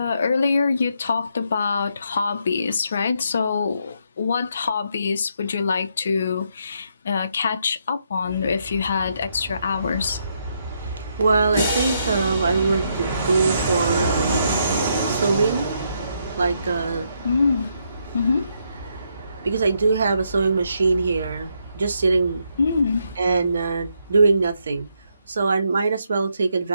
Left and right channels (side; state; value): both; inverted; correlation -0.76